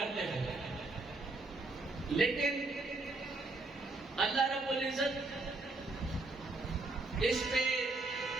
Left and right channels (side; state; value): left; quieter; 3.2 dB